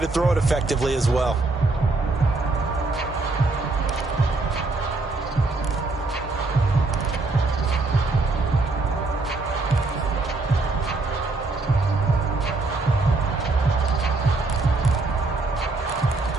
throw it effectively as well.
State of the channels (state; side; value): quieter; left; 3.4 dB